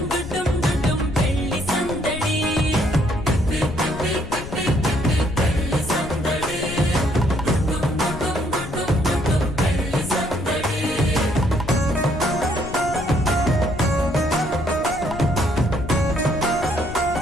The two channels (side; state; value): left; noise; rumble, 11 dB below the sound